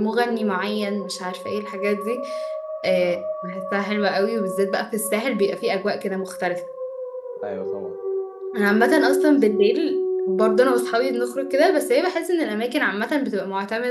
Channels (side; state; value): both; identical; correlation 1.00